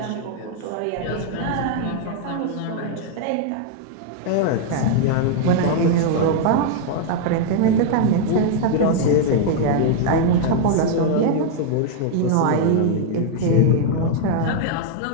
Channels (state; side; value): different; both; correlation 0.00